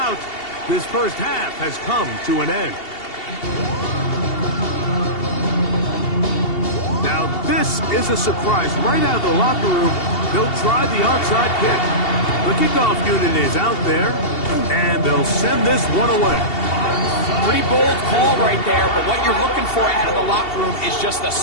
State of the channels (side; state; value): right; late; 2.7 ms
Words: This first half has come to an end. Now, this is a surprise. Right out of the locker room, they'll try the onside kick. The kickoff unit is out there, and they'll send this one away. Pretty bold call right there, but what you're looking for out of the locker room is just a